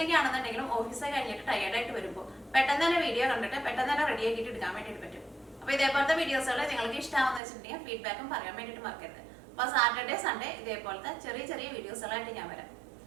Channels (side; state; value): left; drops out; at 7.4 s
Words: ആണെന്നുണ്ടെങ്കിലും ഓഫീസൊക്കെ കഴിഞ്ഞിട്ട് ടയേർഡായിട്ട് വരുമ്പോൾ പെട്ടെന്ന് തന്നെ വീഡിയോ കണ്ടിട്ട് പെട്ടെന്ന് തന്നെ റെഡി ആക്കിയിട്ട് എടുക്കാൻ വേണ്ടിയിട്ട് പറ്റും. അപ്പോൾ ഇതേപോലത്തെ വീഡിയോസുകൾ നിങ്ങൾക്ക് ഇഷ്ടമാണെന്ന് വെച്ചിട്ടുണ്ടെങ്കിൽ ഫീഡ്ബാക്കും പറയാൻ വേണ്ടിയിട്ട് മറക്കരുത്. അപ്പോൾ സാറ്റർഡേ സൺഡേ ഇതേപോലത്തെ ചെറിയ ചെറിയ വീഡിയോസുകളായിട്ട് ഞാൻ വരാം.